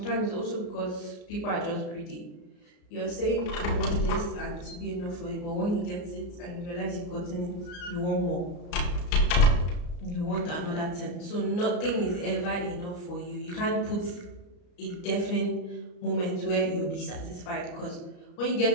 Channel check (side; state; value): right; late; 34 ms